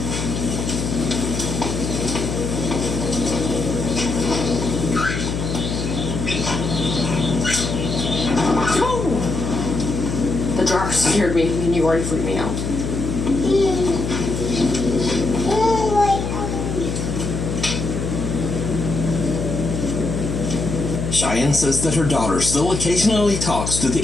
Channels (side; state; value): left; noise; hum, 3 dB below the sound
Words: The jar scared me, and you already freaked me out. Cheyenne says that her daughter still occasionally talks to the